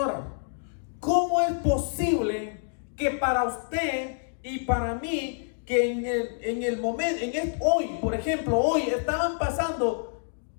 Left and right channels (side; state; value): right; silent; digital silence